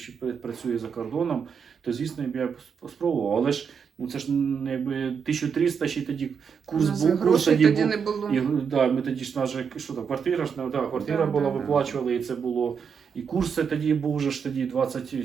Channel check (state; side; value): quieter; left; 6.6 dB